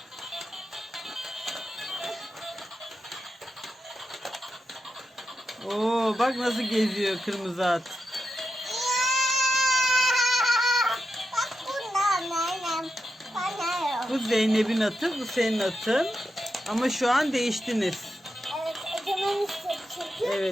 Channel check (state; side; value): normal; both; correlation 0.88